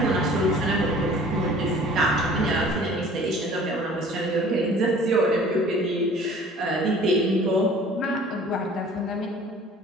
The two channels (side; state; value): both; normal; correlation 0.49